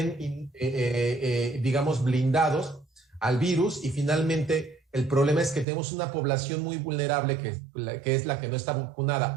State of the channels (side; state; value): left; drops out; at 5.7 s